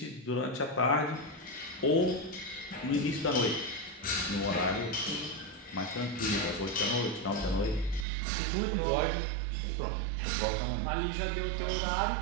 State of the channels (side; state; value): left; drops out; at 8.1 s